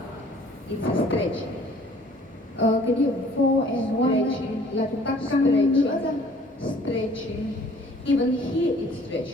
it's a stretching. Cái điểm 4 and 1 Stretching. là chúng ta căng nữa ra. Stretching. Even here it's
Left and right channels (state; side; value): normal; both; correlation 0.54